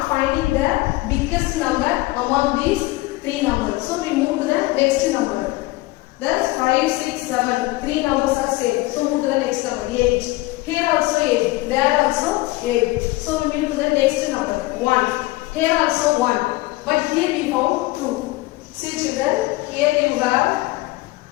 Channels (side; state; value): right; quieter; 20.1 dB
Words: finding the biggest number among these 3 numbers. So we move to the next number. Thus 5, 6, 7. 3 numbers are same. So move to the next number. 8. Here also 8. There also 8. So we move to the next number. 1. Here also 1. But here we found 2. See children, here you have